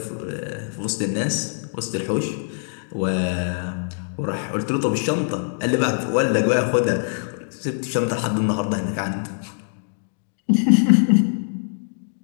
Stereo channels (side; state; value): right; silent; digital silence